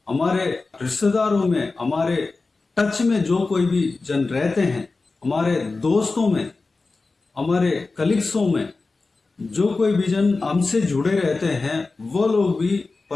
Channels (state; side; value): quieter; right; 3.7 dB